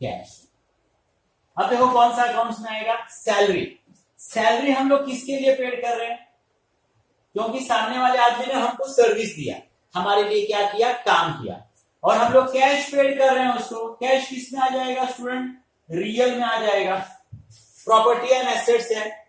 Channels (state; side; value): identical; both; correlation 1.00